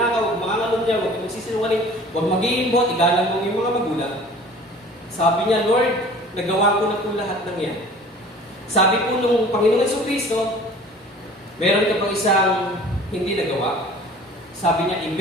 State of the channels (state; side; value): normal; both; correlation 0.46